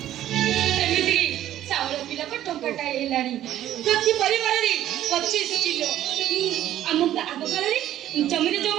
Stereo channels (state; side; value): quieter; left; 12.5 dB